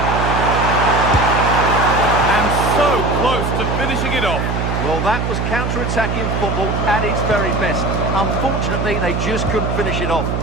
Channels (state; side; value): noise; right; hum, 1 dB below the sound